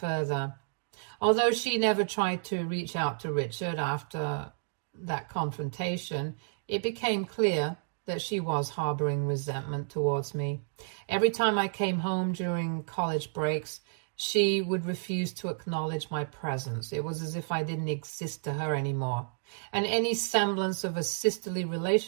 Although she never tried to reach out to Richard after that confrontation, it became clear that she was harboring resentment towards me. Every time I came home during college breaks, she would refuse to acknowledge my presence. It was as if I didn't exist to her anymore, and any semblance of a sisterly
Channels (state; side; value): silent; left; digital silence